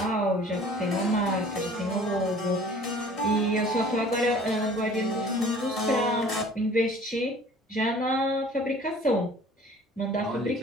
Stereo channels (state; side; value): normal; both; correlation 0.49